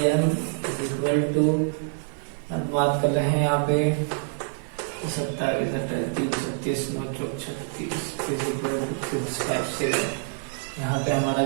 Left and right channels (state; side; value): silent; left; 61 dB below the other